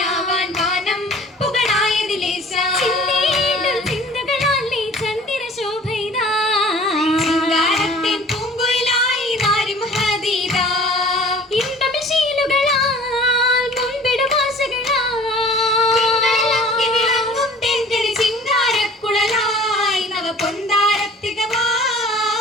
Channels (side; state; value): both; normal; correlation 0.47